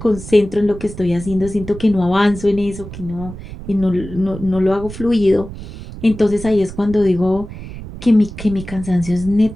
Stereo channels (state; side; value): noise; right; rumble, 12 dB below the sound